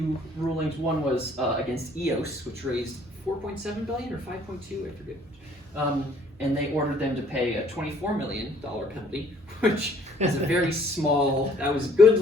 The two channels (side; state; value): both; normal; correlation 0.60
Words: rulings. One was against EOS, which raised 4.7 billion or 5.2, I forget. And they ordered them to pay a $24 million penalty, which is a very small. That was good